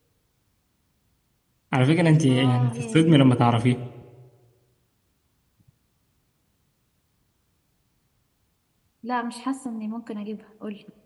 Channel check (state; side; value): identical; both; correlation 1.00